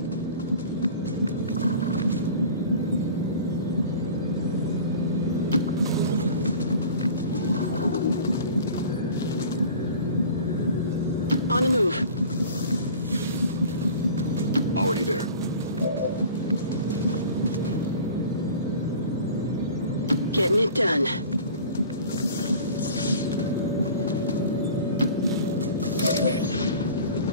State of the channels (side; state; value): both; inverted; correlation -0.42